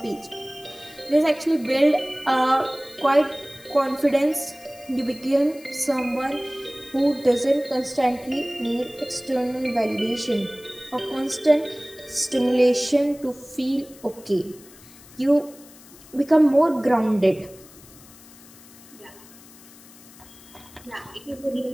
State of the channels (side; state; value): left; noise; hiss, 22 dB below the sound